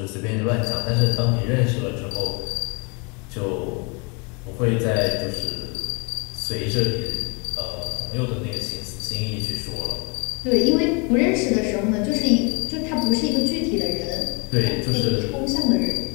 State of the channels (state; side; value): quieter; right; 32.6 dB